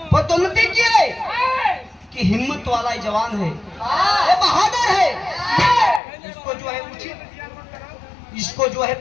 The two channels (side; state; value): right; drops out; at 6.0 s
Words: पदोन्नति किए कि हिम्मत वाला जवान है, ये बहादुर है, इसको जो है उचित, इसको जो है